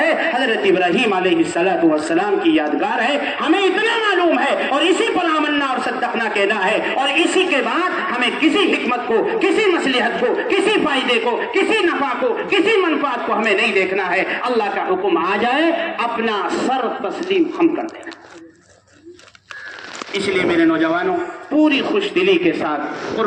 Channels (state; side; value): identical; both; correlation 1.00